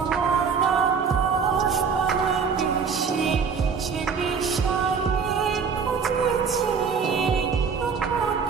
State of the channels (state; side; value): quieter; left; 5.9 dB